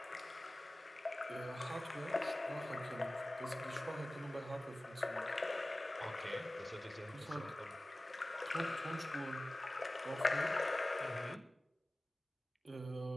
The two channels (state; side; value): normal; both; correlation 0.97